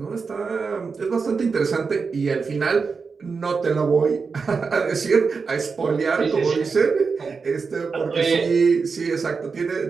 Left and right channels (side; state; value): left; quieter; 5.0 dB